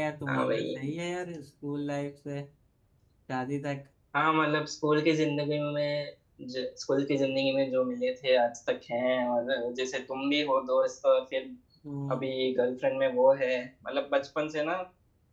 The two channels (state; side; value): identical; both; correlation 1.00